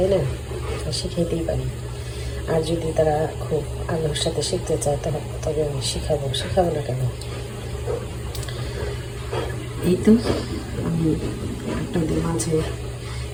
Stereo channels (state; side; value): identical; both; correlation 1.00